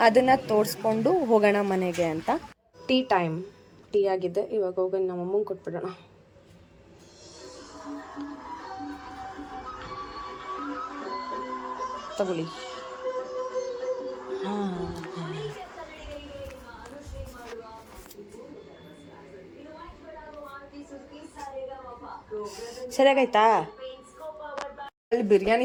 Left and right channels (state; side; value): identical; both; correlation 1.00